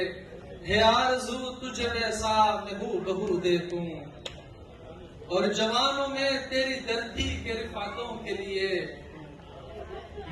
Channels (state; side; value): identical; both; correlation 1.00